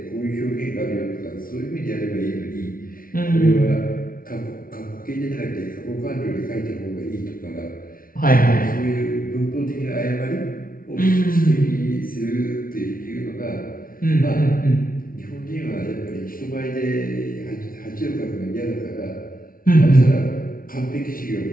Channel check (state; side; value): late; right; 0.42 ms